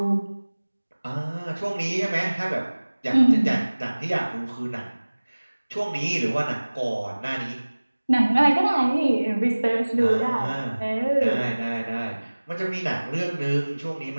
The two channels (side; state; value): both; inverted; correlation -1.00